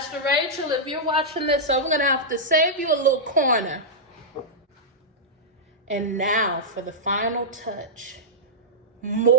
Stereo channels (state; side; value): normal; both; correlation -0.11